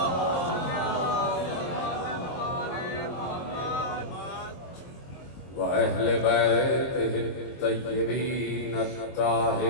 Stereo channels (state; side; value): late; right; 23 ms